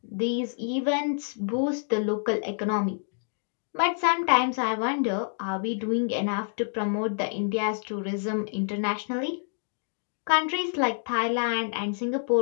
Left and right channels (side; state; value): right; silent; digital silence